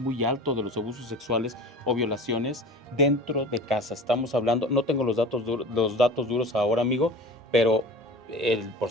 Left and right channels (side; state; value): both; normal; correlation 0.37